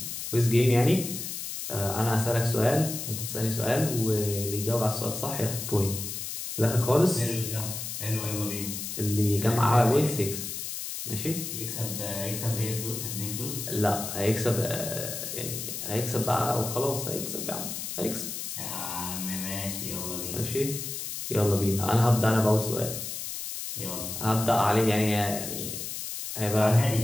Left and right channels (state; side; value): noise; left; hiss, 6 dB below the sound